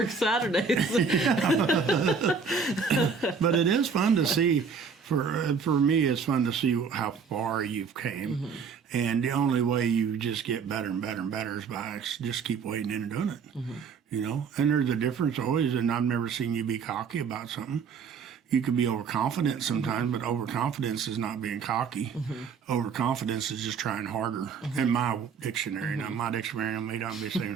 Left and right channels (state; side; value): quieter; left; 5.8 dB